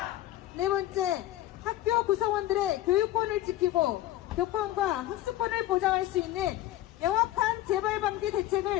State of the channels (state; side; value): quieter; right; 14.6 dB